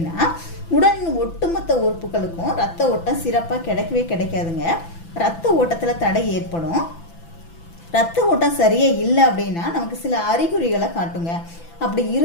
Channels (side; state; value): right; late; 6.0 ms